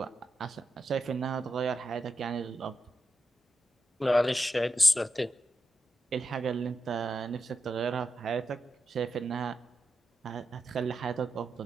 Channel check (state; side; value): normal; both; correlation 0.89